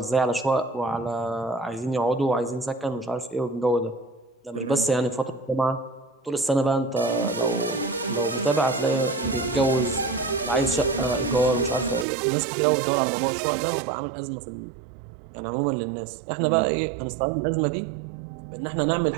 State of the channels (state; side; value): drops out; left; at 12.1 s